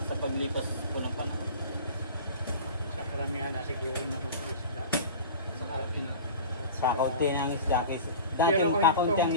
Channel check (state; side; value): inverted; both; correlation -0.36